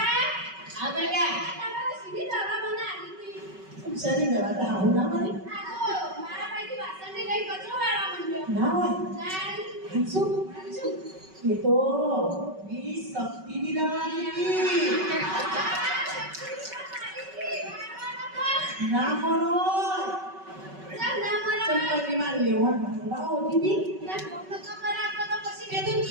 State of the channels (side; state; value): left; late; 5.3 ms